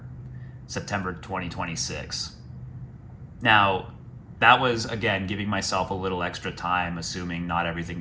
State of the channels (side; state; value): both; identical; correlation 1.00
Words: 2026. Now, that was, again, giving myself a little extra time, assuming not everything